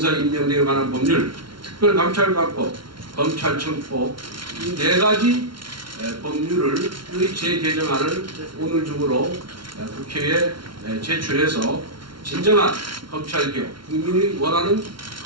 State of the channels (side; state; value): left; late; 0.73 ms